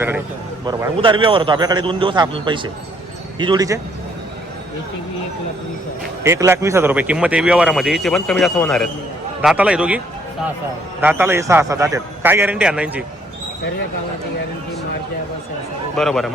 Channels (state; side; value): normal; both; correlation 0.66